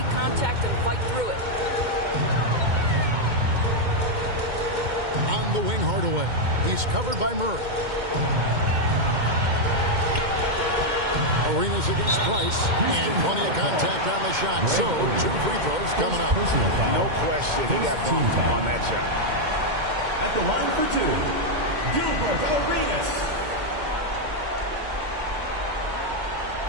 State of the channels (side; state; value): left; late; 2.2 ms